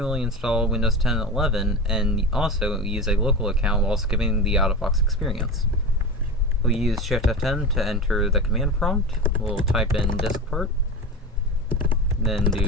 install Windows 10 and 11 and also use a local account while skipping the out-of-box experience. We'll use Shift F10 to enter the command prompt. We'll type in disk part, then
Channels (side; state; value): both; normal; correlation 0.25